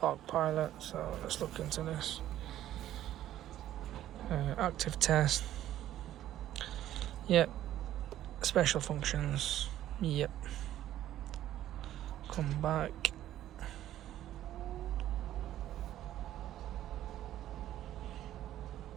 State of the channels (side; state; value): left; quieter; 12.7 dB